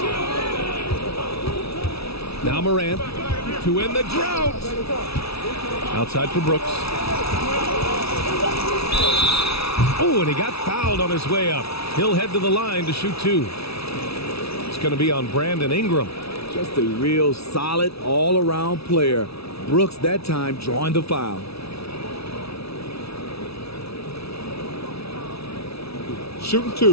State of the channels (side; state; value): right; late; 0.77 ms